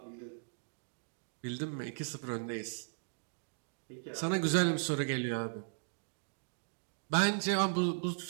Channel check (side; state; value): left; silent; digital silence